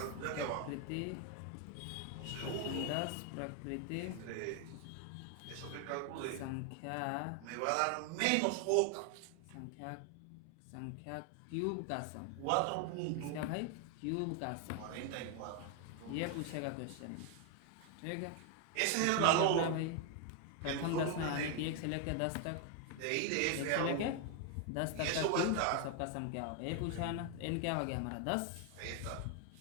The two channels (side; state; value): both; different; correlation 0.01